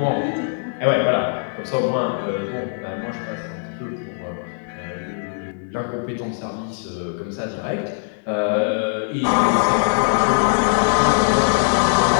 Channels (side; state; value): right; silent; 65 dB below the other